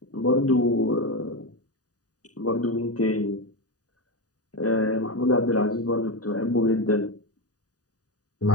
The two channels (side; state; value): right; late; 0.68 ms